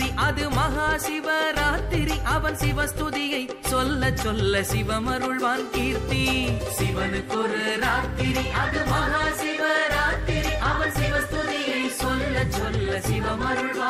அது மகா சிவராத்திரி, அவன் சிவஸ்துதியை சொல்ல சொல்ல சிவமருள்வான் கீர்த்தி. சிவனுக்கொரு ராத்திரி அது மகா சிவராத்திரி, அவன் சிவஸ்துதியை சொல்ல சொல்ல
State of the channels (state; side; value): identical; both; correlation 1.00